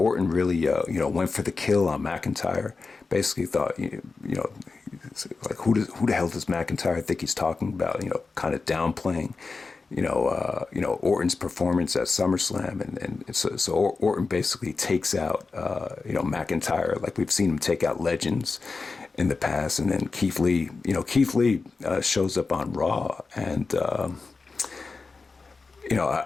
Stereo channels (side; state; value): right; quieter; 4.3 dB